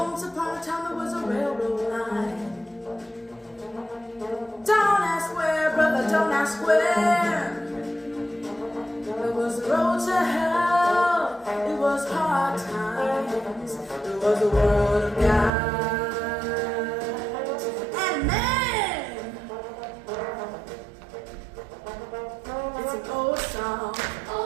upon a time there was a railroad line. Don't ask where, brother, don't ask where. It was the road to hell, it was hard times. It was the world of God and man. It's an old song.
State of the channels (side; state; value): left; drops out; at 15.5 s